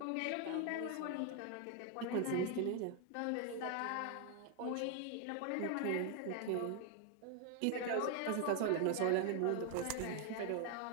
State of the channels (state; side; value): different; both; correlation 0.00